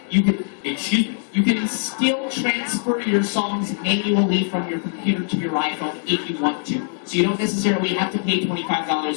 You can still transfer your songs manually from your computer to your iPhone if you want to. So you don't necessarily have to pay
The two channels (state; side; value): silent; right; digital silence